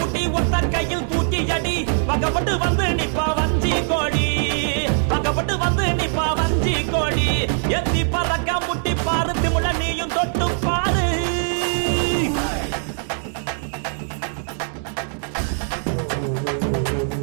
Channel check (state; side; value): silent; left; digital silence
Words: புட்டி ஒத்த கையில் தூக்கி அடி பக்கப்பட்டு வந்து நிப்பா வஞ்சி கோடி பக்கப்பட்டு வந்து நிப்பா வஞ்சி கோடி எத்தி பறக்க முட்டி பாரு திமுல நீயும் தொட்டு பாரு